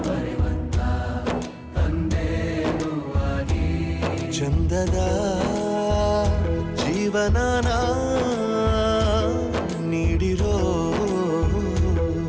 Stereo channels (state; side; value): identical; both; correlation 1.00